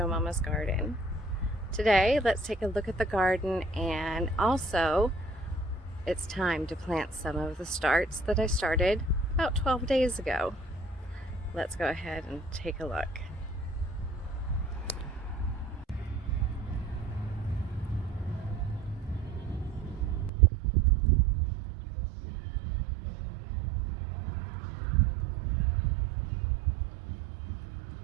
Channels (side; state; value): left; drops out; at 20.3 s